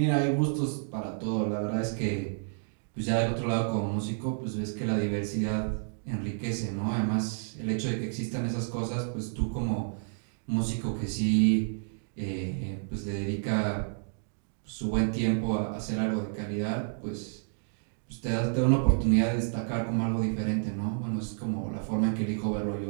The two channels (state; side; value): silent; left; digital silence